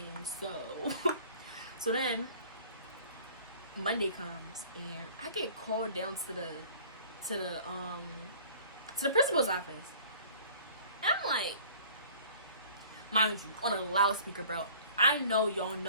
So then Monday comes, and I get called down to the principal's office. And I'm like, mind you, on a loudspeaker, bro. I know y'all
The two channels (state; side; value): inverted; both; correlation -0.49